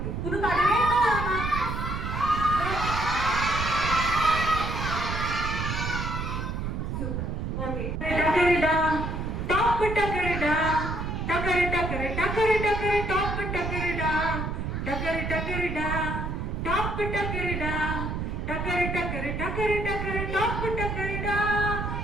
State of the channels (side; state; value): right; noise; rumble, 3 dB below the sound